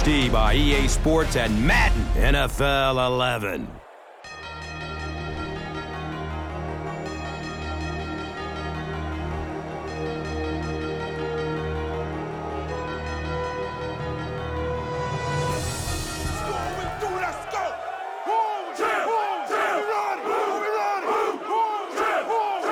by EA Sports and Madden NFL 11.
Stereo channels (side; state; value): both; identical; correlation 1.00